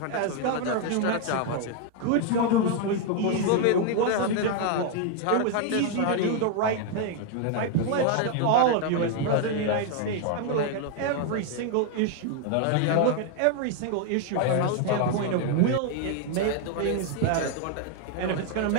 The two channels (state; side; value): different; both; correlation 0.00